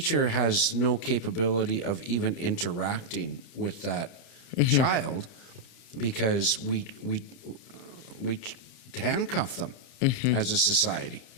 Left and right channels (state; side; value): late; right; 30 ms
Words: has no capability of even interacting with that child, because we handcuff them. as a society.